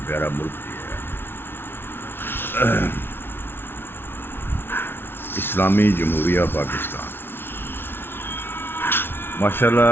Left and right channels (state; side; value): late; right; 0.11 ms